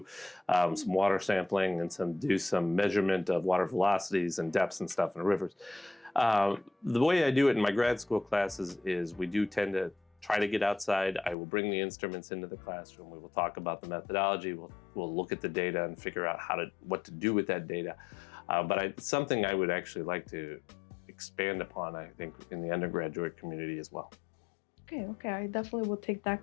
some water sampling and do some measurement of water velocities and depths and stuff in the rivers. The way I do it in my grad school classes is we do tend to try to get outside. I will bring the instruments into the classroom. We will talk about the methodology. We'll look at the data and figure out what to do with that data. But it's something I would actually like to expand upon, I think, in the undergraduate community as well. Okay, I definitely will take that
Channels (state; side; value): drops out; right; at 11.4 s